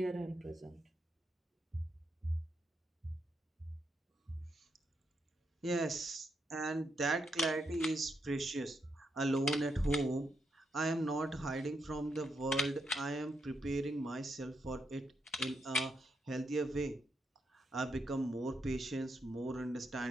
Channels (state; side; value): normal; both; correlation 0.80